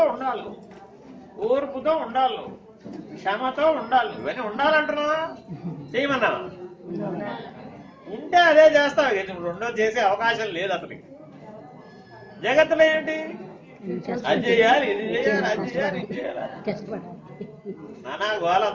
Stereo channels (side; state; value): both; identical; correlation 1.00